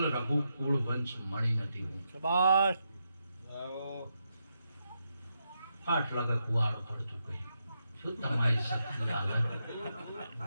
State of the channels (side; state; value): both; inverted; correlation -0.84